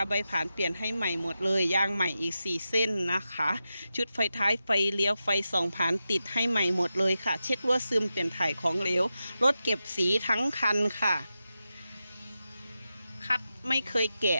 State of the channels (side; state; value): both; inverted; correlation -0.90